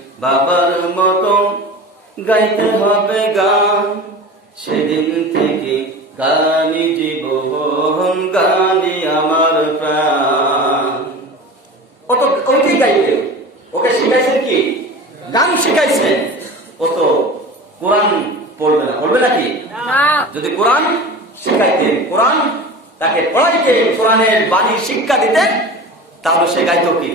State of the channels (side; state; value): both; normal; correlation 0.34